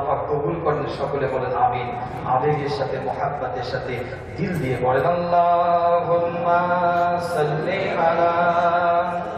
পাক কবুল করেন সকলে বলেন আমিন আবেগের সাথে মুহাব্বতের সাথে দিল দিয়ে বলেন আল্লাহুম্মা সাল্লি আলা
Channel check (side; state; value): both; identical; correlation 1.00